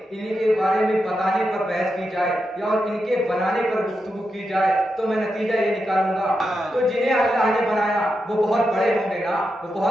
بتانے پر بحث کی جائے یا اور ان کے بنانے پر گفتگو کی جائے تو میں نتیجہ یہ نکالوں گا، تو جنہیں اللہ نے بنایا وہ بہت بڑے ہوں گے نا، وہ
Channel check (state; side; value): normal; both; correlation 0.87